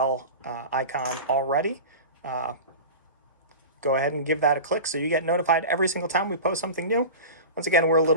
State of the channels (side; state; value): both; inverted; correlation -0.30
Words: icon already, go ahead and give that a click so you get notified every single time we post something new. Once again, we're